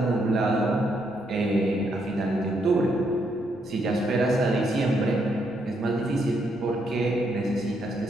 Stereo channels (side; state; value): left; noise; rumble, 25 dB below the sound